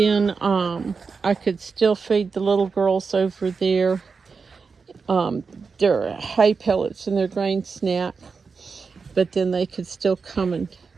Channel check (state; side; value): quieter; left; 5.0 dB